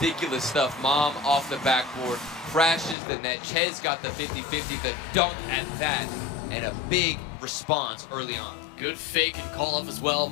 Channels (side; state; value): right; drops out; at 3.0 s